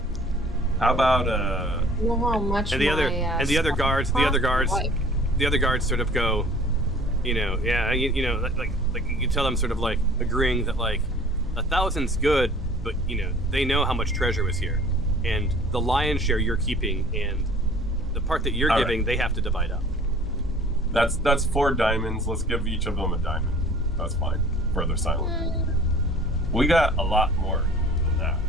How about You know how much And the other my, and the other stuff guards, the other guards, costs? the other guards sort of go, like you tell them sort of like agreeing that like 1,000's good, but they know how much treasure was here, and the lion's share you're keeping, and the part that you're All giving right. they have to divide up. that's 4 diamonds. Let's give each of them a diamond. That's fine. Further silence. We got a lot more than that,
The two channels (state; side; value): normal; both; correlation 0.49